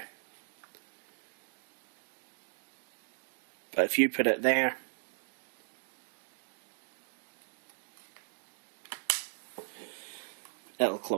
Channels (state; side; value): silent; left; digital silence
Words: but if you put it there, it'll